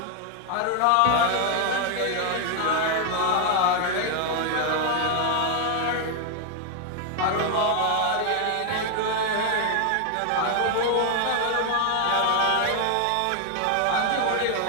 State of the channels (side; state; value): both; different; correlation 0.00